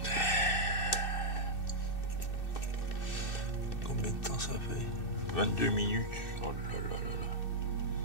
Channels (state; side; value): late; right; 2.6 ms